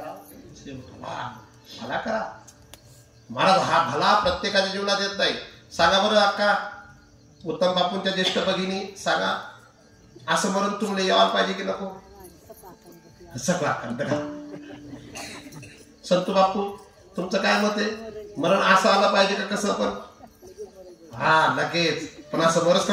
भला करा. महाराज हा भला प्रत्येकाच्या जीवनात येत नाही. सांगा बरं अक्का, उत्तम बापूंच्या ज्येष्ठ भगिनी सांगा, असं मरण तुम्हाला यायला पाहिजे की नको. सगळा बघा संतू बापू तुमचं काय मत आहे, मरण असं आलं पाहिजे का कसं पण. हा लगेच पण असं बरंच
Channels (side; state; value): both; identical; correlation 1.00